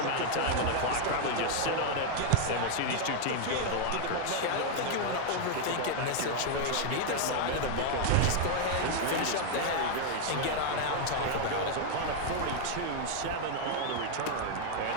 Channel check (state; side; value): different; both; correlation 0.00